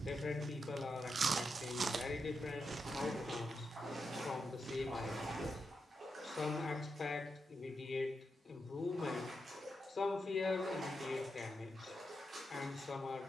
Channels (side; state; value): both; normal; correlation 0.85